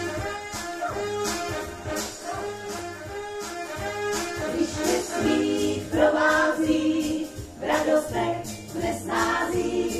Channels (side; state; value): both; identical; correlation 1.00